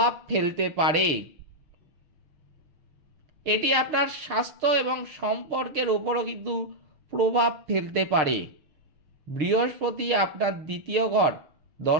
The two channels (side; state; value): left; late; 6.6 ms